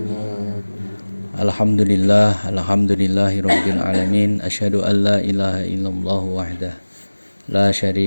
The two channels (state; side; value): inverted; both; correlation -1.00